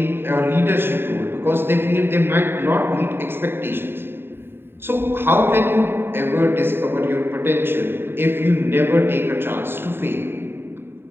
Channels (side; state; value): left; late; 0.11 ms